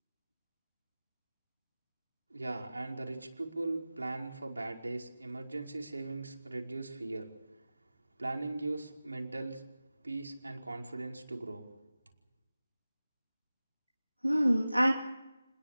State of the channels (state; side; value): inverted; both; correlation -0.96